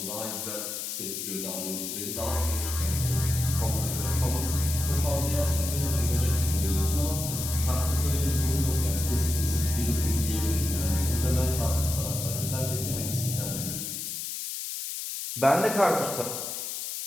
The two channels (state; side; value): noise; left; hiss, 5 dB below the sound